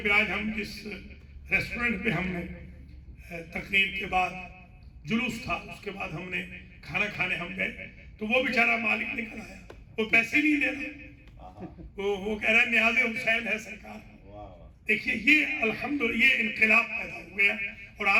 پہ آج ہم جس ریسٹورنٹ پہ ہم نے تقریر کے بعد جلوس تھا، اس کے بعد ہم نے کھانا کھانے ہم گئے، تو وہ بیچارہ مالک نکل آیا، وہ پیسے نہیں دے رہا، وہ کہہ رہا ہے نیاز حسین ہے سرکار. دیکھیے یہ الحمدللہ یہ انقلاب پیدا ہو گیا، اور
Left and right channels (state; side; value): identical; both; correlation 1.00